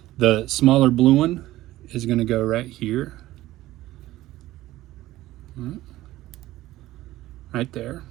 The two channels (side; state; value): left; quieter; 16.0 dB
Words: The smaller blue one is going to go right here, right there,